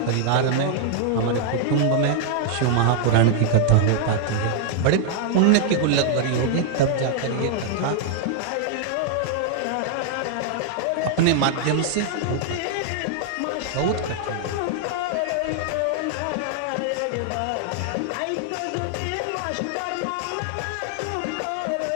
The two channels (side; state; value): both; different; correlation 0.00